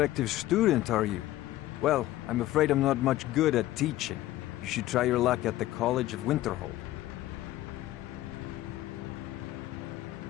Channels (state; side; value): quieter; right; 15.4 dB